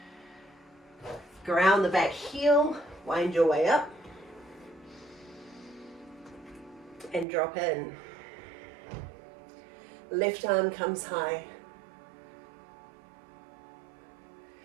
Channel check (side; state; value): left; drops out; at 7.2 s